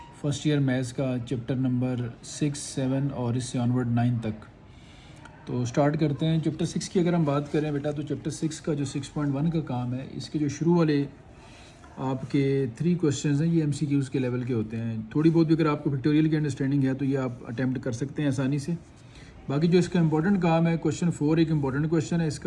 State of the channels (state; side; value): identical; both; correlation 1.00